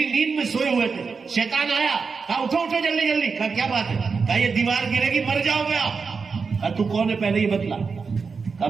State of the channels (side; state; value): left; quieter; 5.1 dB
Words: نیند میں سوئے ہوئے تھے. شیطان آیا, کہا اٹھو اٹھو جلدی جلدی. کہا کیا بات ہے؟ کہا یہ دیوار گرے گی, مر جاؤ گے آپ. کہا تو کون ہے پہلے یہ بتلا. کہا